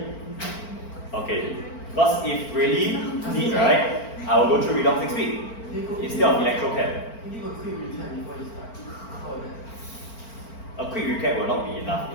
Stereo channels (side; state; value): right; late; 4.4 ms